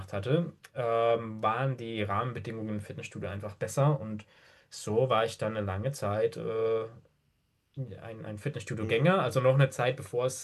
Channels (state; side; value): identical; both; correlation 1.00